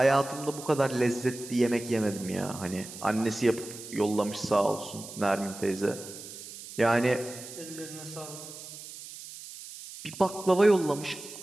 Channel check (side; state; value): right; noise; hiss, 13 dB below the sound